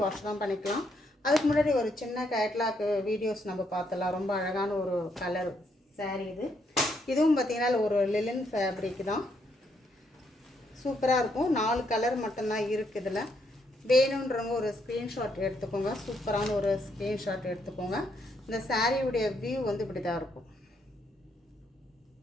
வாஷ் தான் பண்ணிக்கலாம். அதுக்கு முன்னாடி ஒரு சின்ன கேட்லாக் வீடியோஸ் நம்ம பார்த்தலாம். ரொம்ப அழகான ஒரு கலர் சாரீ இது. இதுவும் பார்த்திங்கன்னா ஒரு லிலன் ஃபேப்ரிக் தான், சூப்பராக இருக்கும். 4 கலர் மட்டும்தான் இருக்குது இதில். வேணுன்றவங்க ஒரு ஸ்க்ரீன்ஷாட் எடுத்துக்கோங்க. சூப்பரான ஒரு ஸ்க்ரீன்ஷாட் எடுத்துக்கோங்க. இந்த சாரியுடைய வியூ வந்து இப்படி தான் இருக்கும்.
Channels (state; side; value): normal; both; correlation 0.75